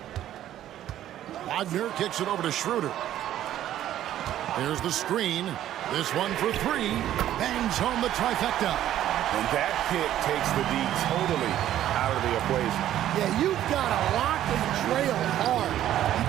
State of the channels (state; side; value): quieter; left; 12.2 dB